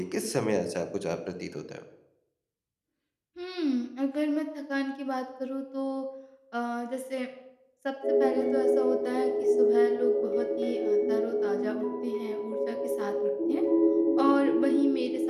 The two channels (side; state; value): both; identical; correlation 1.00